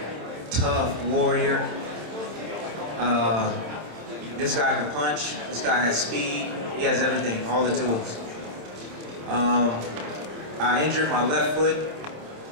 tough warrior. This guy can punch, this guy has speed, he has everything, all the tools. I injured my left foot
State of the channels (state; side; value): late; left; 27 ms